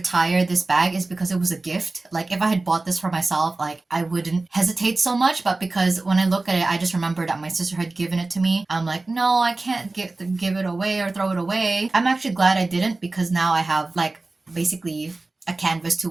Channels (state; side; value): quieter; left; 3.2 dB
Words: this bag is because it was a gift. Like if I had bought this for myself, like I wouldn't hesitate so much, but because when I look at it, I just remember that my sister had given it to me. I'm like, no, I can't give it away or throw it away. I'm actually glad I didn't because now I have like basically a canvas to